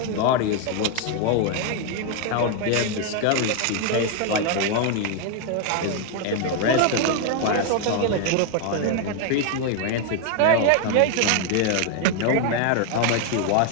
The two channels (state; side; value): different; both; correlation 0.01